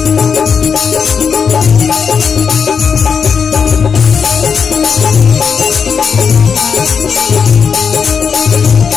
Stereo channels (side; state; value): right; quieter; 6.3 dB